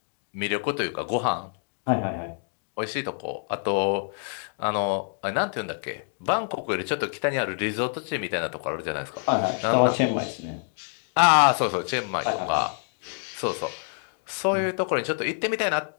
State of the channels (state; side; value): silent; right; 60 dB below the other